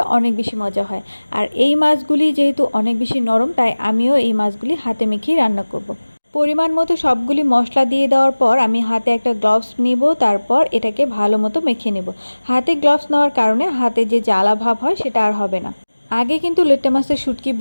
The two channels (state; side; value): inverted; both; correlation -1.00